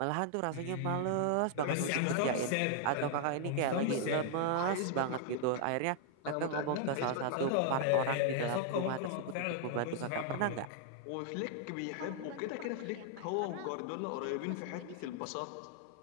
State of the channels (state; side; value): different; both; correlation -0.01